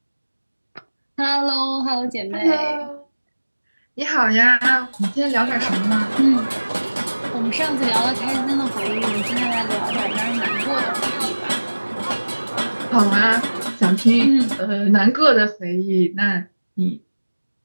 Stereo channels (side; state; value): both; inverted; correlation -1.00